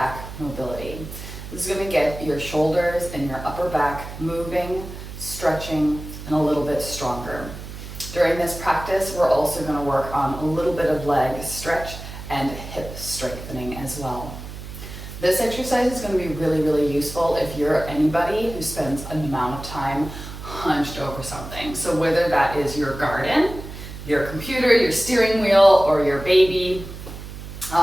mobility. This is going to get your shoulders and your upper back moving, stretching, and a little bit stronger. During this practice, we're also going to work on a little bit of leg stretch and hip strengthening as well. This exercise is going to be really, really useful if you're anybody who spends an amount of time hunched over something. So whether that is your garden, your computer, your steering wheel, or your baby,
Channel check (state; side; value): noise; right; hum, 11 dB below the sound